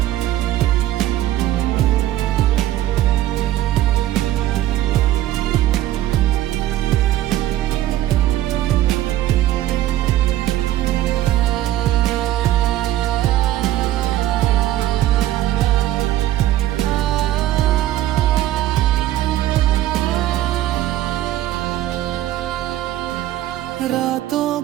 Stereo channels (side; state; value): left; quieter; 13.8 dB